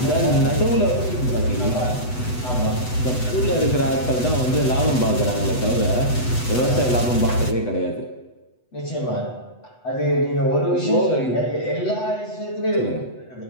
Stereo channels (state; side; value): late; right; 8.0 ms